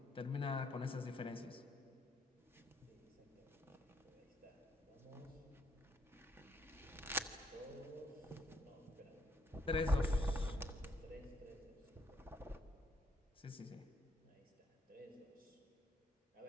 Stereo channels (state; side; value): normal; both; correlation 0.72